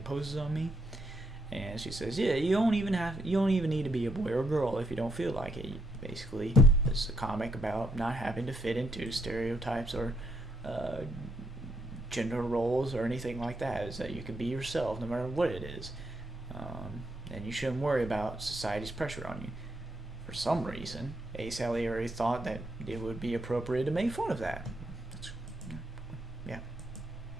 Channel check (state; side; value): normal; both; correlation 0.77